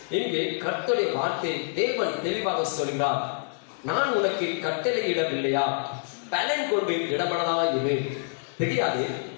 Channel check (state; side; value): silent; right; digital silence